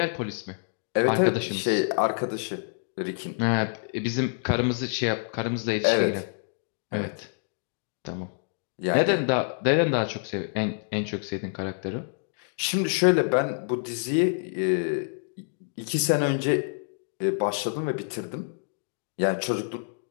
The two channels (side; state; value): right; silent; digital silence